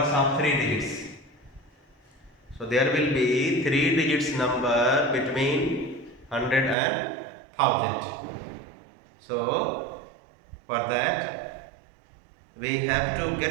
of 3 digits. So there will be 3 digits number between 100 and 1000. So for that we have to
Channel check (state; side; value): drops out; left; at 6.8 s